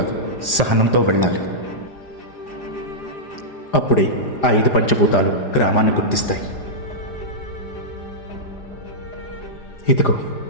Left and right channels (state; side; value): late; right; 4.9 ms